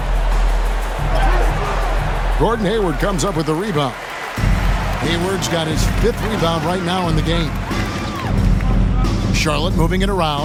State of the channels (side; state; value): both; identical; correlation 1.00